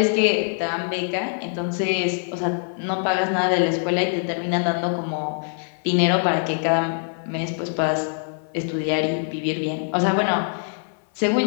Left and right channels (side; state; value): right; silent; 57 dB below the other